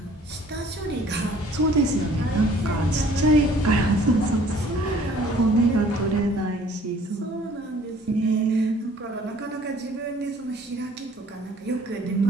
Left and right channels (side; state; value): both; normal; correlation 0.55